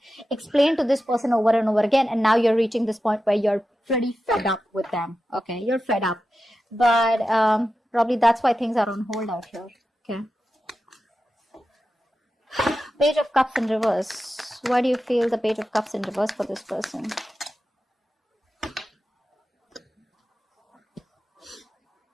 explained to this person over and over again, and now you're reaching this point where you're pretty fed up with them, okay? You're fed up. But probably that's why things are on hold out here, okay? Page of Cups in reverse. Why do you feel the Page of Cups in reverse for this person?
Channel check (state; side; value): normal; both; correlation 0.92